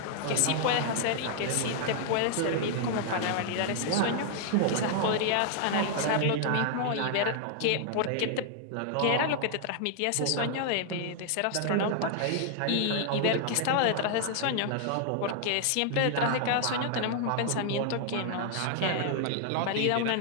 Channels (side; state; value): both; different; correlation 0.00